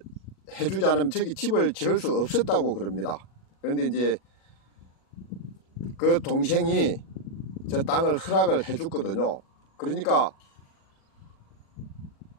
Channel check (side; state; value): right; late; 37 ms